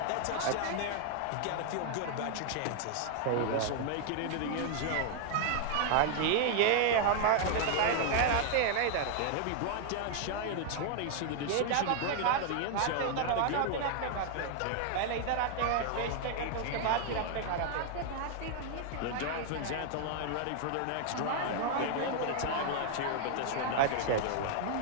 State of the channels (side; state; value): both; different; correlation 0.00